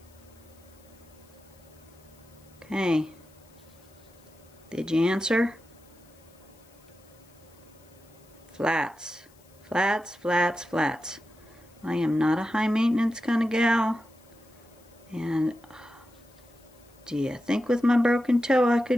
Okay. Did you answer? Flats. Flats, flats, flats. I am not a high maintenance kind of gal. And do you think with my broken toe I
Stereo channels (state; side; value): noise; left; hiss, 29 dB below the sound